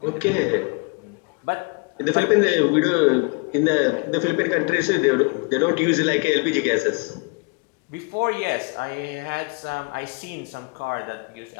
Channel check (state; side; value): quieter; right; 32.8 dB